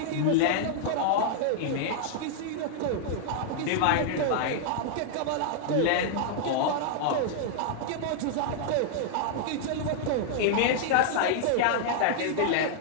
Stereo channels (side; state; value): both; different; correlation -0.01